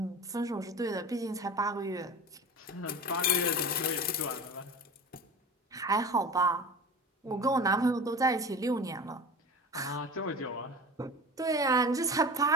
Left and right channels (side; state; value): both; normal; correlation 0.33